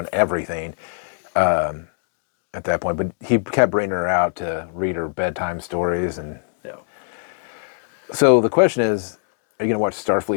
everything at that point. But he kept bringing her out to read her bedtime stories. And Yeah. so the question is, are you going to watch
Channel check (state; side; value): silent; right; digital silence